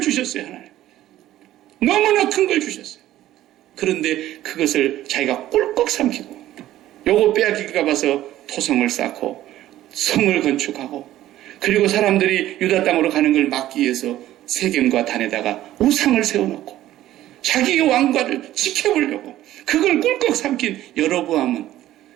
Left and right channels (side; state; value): left; quieter; 13.9 dB